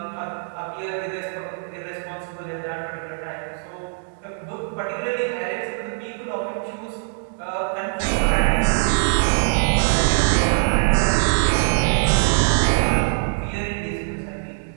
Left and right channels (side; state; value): left; silent; digital silence